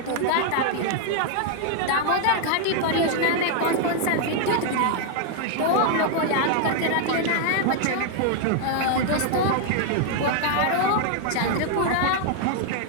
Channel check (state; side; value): different; both; correlation 0.00